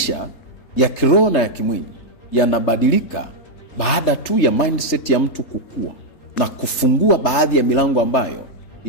ya kiroho na ya kimwili yanabadilika baada tu ya mindset ya mtu kukua na kufungua baadhi ya milango ambayo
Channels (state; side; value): late; right; 3.3 ms